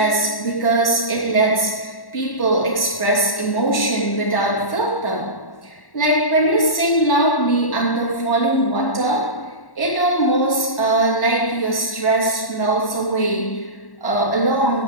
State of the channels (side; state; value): right; late; 1.1 ms